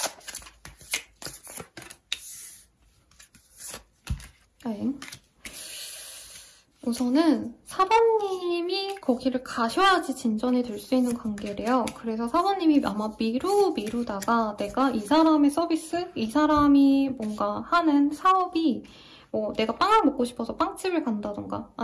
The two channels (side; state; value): both; identical; correlation 1.00